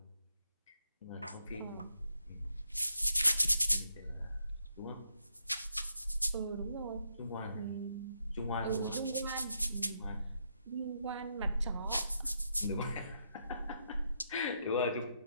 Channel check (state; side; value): inverted; both; correlation -0.80